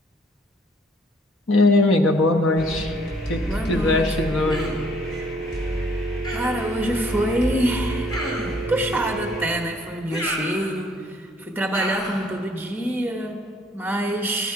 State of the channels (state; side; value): normal; both; correlation 0.62